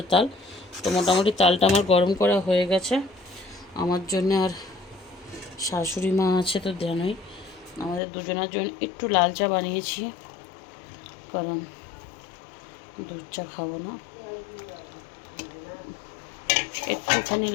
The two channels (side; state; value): right; drops out; at 8.0 s